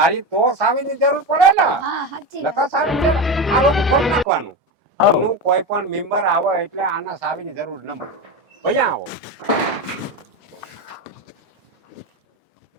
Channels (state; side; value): normal; both; correlation 0.19